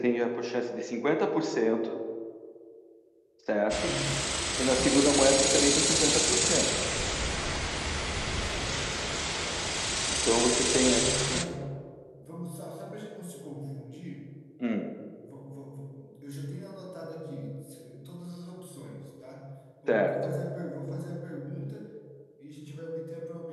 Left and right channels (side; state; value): both; identical; correlation 1.00